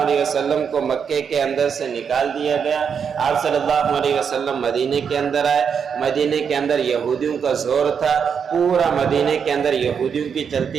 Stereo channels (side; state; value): left; quieter; 6.9 dB